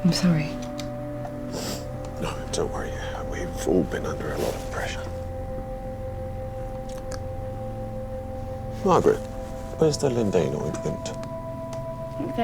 I'm sorry. No, don't worry. We've all been under a lot of pressure. Margaret, where's the Lindane ointment? I think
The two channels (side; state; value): both; identical; correlation 1.00